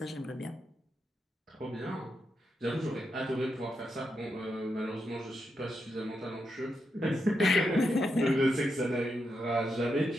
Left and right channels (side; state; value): both; normal; correlation 0.84